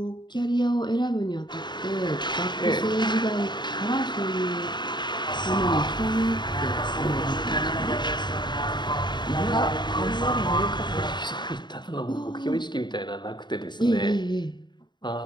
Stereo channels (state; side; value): late; right; 0.22 ms